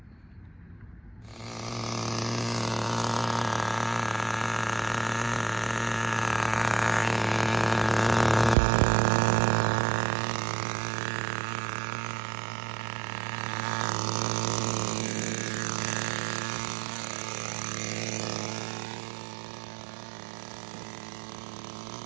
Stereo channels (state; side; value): drops out; left; at 8.6 s